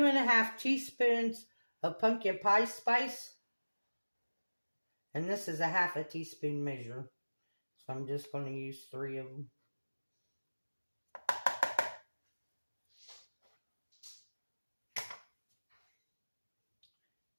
teaspoons of pumpkin pie spice. And this is a ½ teaspoon measure. So I'm just going to use 3 of them.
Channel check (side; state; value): both; inverted; correlation -1.00